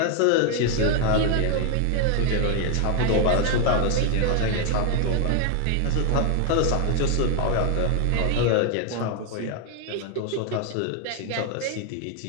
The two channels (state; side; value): different; both; correlation 0.00